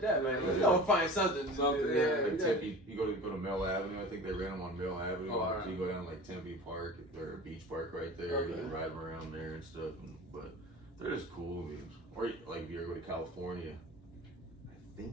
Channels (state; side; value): normal; both; correlation 0.37